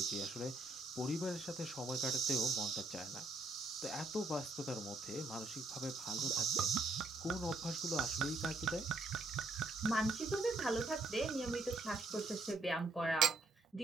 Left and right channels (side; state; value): left; quieter; 3.1 dB